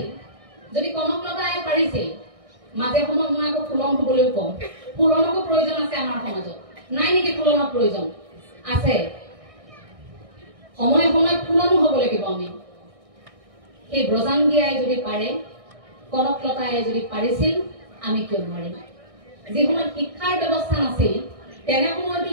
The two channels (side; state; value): left; late; 1.6 ms